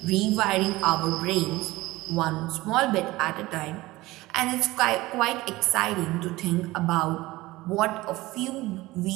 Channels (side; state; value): left; quieter; 19.2 dB